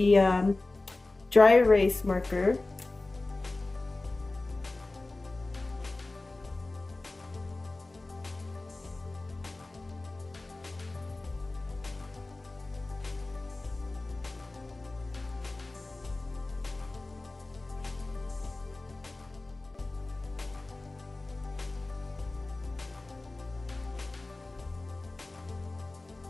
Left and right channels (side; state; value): right; quieter; 3.1 dB